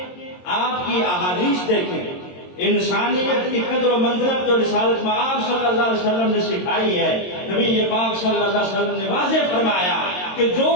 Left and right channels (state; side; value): late; right; 22 ms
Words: آپ کی احادیث دیکھیں، انسانیت کی قدر و منزلت جو رسالت میں آپ صلی اللہ علیہ وسلم نے سکھائی ہے. نبی پاک صلی اللہ علیہ وسلم نے واضح فرمایا کہ جو